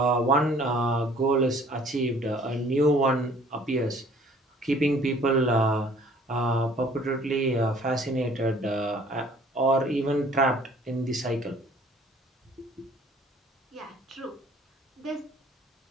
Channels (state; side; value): normal; both; correlation 0.54